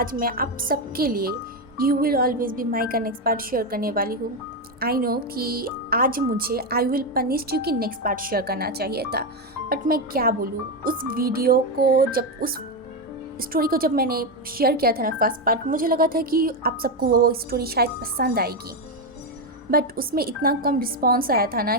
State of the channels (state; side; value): normal; both; correlation 0.08